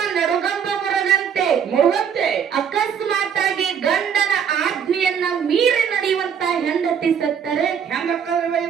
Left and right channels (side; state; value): left; quieter; 7.7 dB